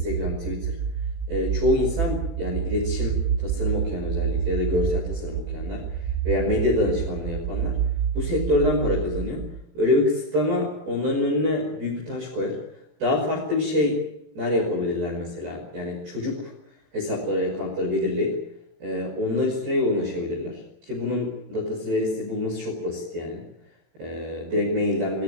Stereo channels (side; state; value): left; late; 18 ms